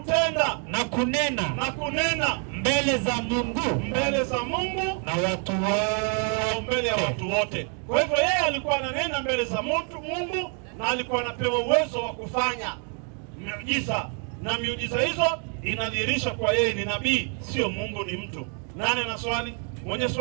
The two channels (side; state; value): left; quieter; 39.7 dB